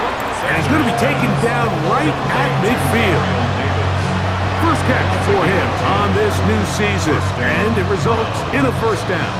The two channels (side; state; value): both; identical; correlation 1.00